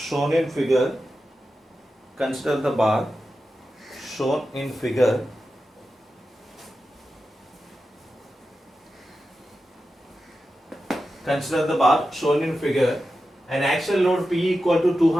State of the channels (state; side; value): normal; both; correlation 0.91